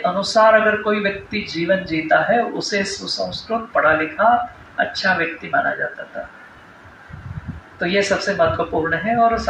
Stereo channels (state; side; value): identical; both; correlation 1.00